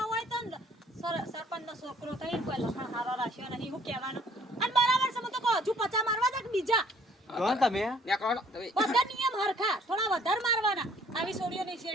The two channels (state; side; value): normal; both; correlation 0.59